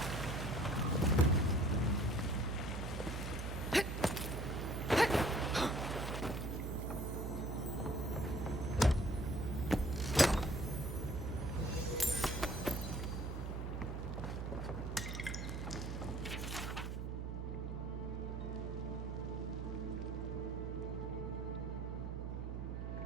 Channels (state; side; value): noise; right; hum, 4 dB below the sound